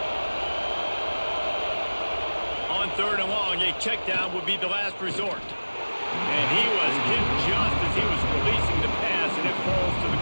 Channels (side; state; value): both; inverted; correlation -1.00